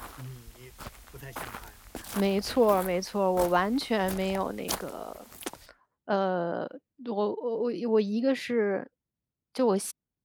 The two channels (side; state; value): both; identical; correlation 1.00